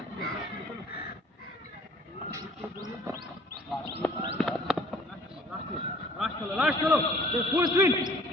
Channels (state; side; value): normal; both; correlation 0.53